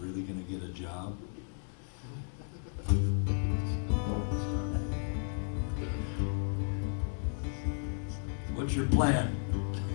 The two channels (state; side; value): silent; right; 55 dB below the other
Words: going to get a job. What's your plan?